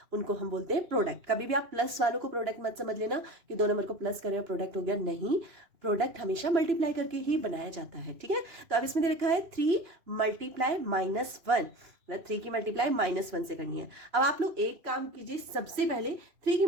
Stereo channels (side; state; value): left; late; 2.6 ms